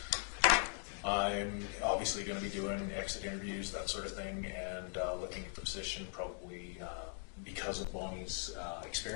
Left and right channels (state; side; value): silent; right; 51 dB below the other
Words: I'm obviously going to be doing exit interviews, that sort of thing, and looking at the position probably because of Bonnie's